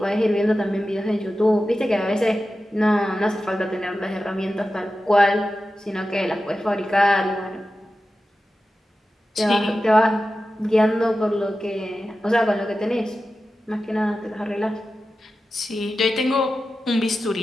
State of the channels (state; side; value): normal; both; correlation 0.93